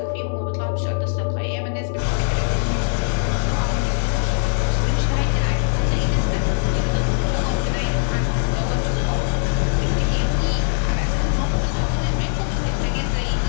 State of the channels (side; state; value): right; silent; 65 dB below the other